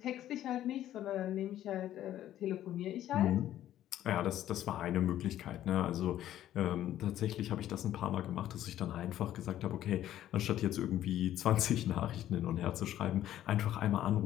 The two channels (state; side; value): quieter; right; 12.4 dB